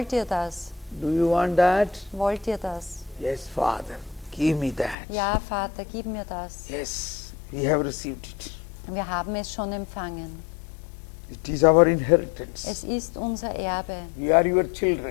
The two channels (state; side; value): drops out; right; at 5.0 s